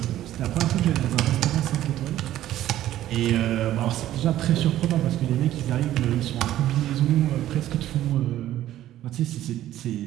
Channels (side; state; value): left; quieter; 13.3 dB